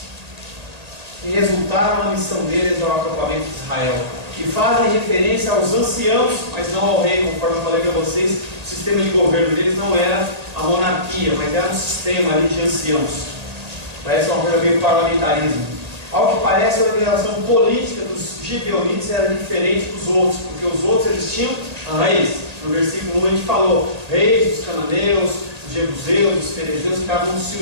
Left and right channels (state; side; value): late; left; 1.8 ms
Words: que resultaram na missão deles ao acampamento de Israel, e fazem referência aos anciãos, mas não ao rei, conforme eu falei para vocês. O sistema de governo deles não era a monarquia, mas era um sistema ali de anciãos. Parece uma coisa meio parlamentarismo. Ao que parece, a organização política dos gibeonitas era diferente dos outros, porque os outros eles tinham reis. No versículo 1 a gente falou: reis dos cananeus, dos jebuseus, dos ferezeus, cada um se